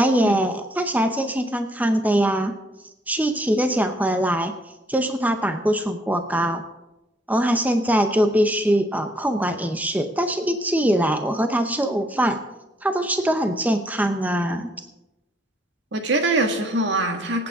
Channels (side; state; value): both; normal; correlation 0.67